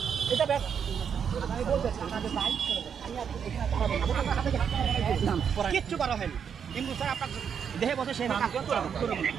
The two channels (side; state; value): left; quieter; 7.4 dB